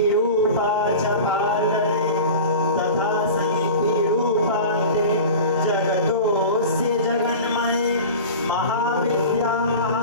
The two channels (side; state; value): both; inverted; correlation -0.34